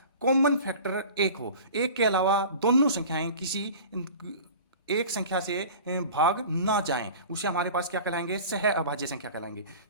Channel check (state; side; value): inverted; both; correlation -0.39